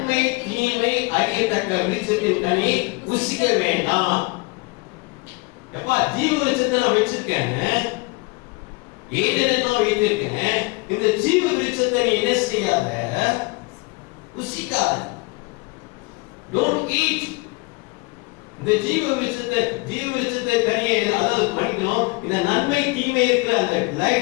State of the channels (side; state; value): right; quieter; 26.2 dB